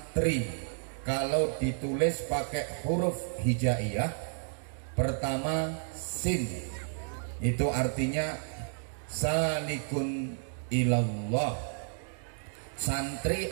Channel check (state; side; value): silent; left; 57 dB below the other